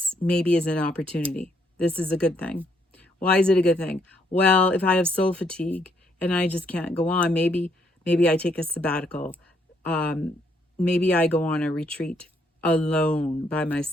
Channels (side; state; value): both; normal; correlation 0.72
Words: maybe is an opportunity. This is a good thing. Why is it a good thing? Well, if I have soul fatigue and I just can't go on, maybe I take a sabbatical. Maybe I go on a retreat alone by